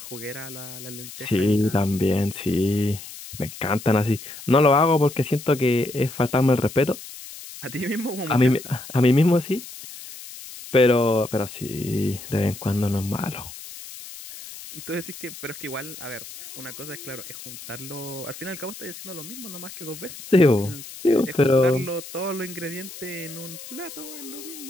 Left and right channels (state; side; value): noise; left; hiss, 14 dB below the sound